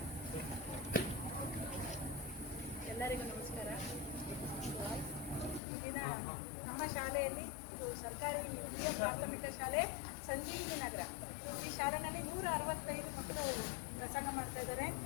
ಎಲ್ಲರಿಗೂ ನಮಸ್ಕಾರ. ಈ ದಿನ ನಮ್ಮ ಶಾಲೆಯಲ್ಲಿ ಇದು ಸರ್ಕಾರಿ ಹಿರಿಯ ಪ್ರಾಥಮಿಕ ಶಾಲೆ ಸಂಜೀವಿನಿ ನಗರ. ಈ ಶಾಲೆಯಲ್ಲಿ 165 ಮಕ್ಕಳು ವ್ಯಾಸಂಗ ಮಾಡ್ತಾ ಇದ್ದಾರೆ.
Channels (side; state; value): right; drops out; at 5.6 s